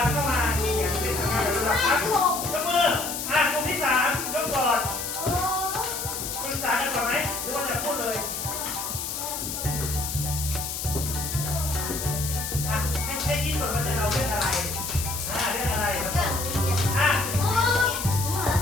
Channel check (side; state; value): left; noise; hiss, 4 dB below the sound